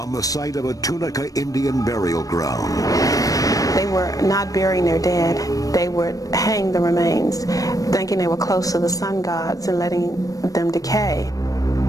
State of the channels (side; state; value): right; late; 0.17 ms